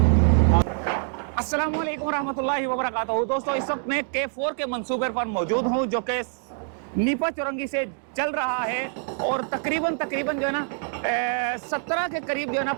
अस्सलाम वालेकुम रहमतुल्लाहि व बरकातहू। दोस्तों इस वक्त मैं K4 के मंसूबे पर मौजूद हूँ जो कि नीपा चौरंगी से चल रहा है और तकरीबन जो है ना 17 के करीब जो है ना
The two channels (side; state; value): left; silent; 55 dB below the other